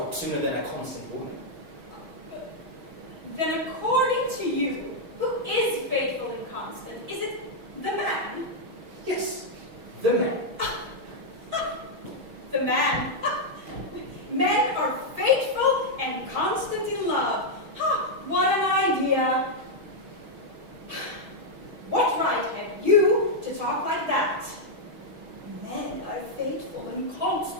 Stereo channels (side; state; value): left; late; 6.3 ms